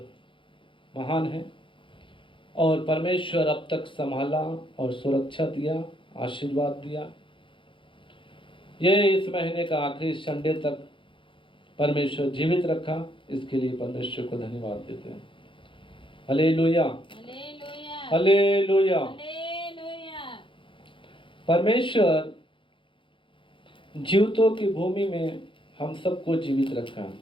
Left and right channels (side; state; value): right; late; 0.25 ms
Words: महान है और परमेश्वर अब तक संभाला और सुरक्षा दिया, आशीर्वाद दिया। ये इस महीने का आखिरी संडे तक परमेश्वर जीवित रखा, इसके लिए परमेश्वर को धन्यवाद देते हैं। Hallelujah, hallelujah, hallelujah. हालेलुया। परमेश्वर जीवितों की भूमि में हम सबको जीवित रखा,